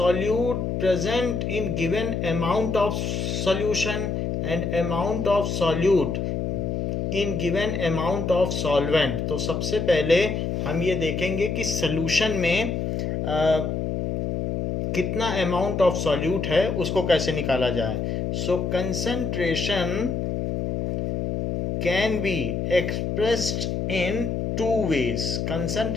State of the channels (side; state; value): left; noise; hum, 1 dB below the sound